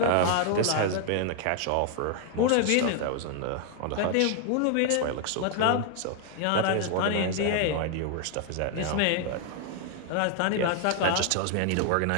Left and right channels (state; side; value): different; both; correlation 0.00